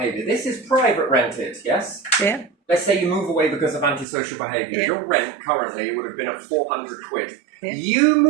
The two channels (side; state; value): left; drops out; at 4.0 s